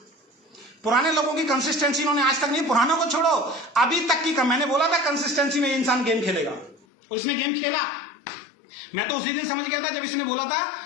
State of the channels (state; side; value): drops out; right; at 6.8 s